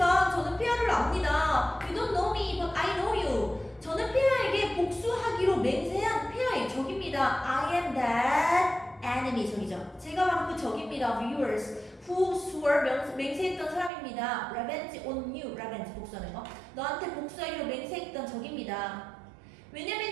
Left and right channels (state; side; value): drops out; left; at 13.9 s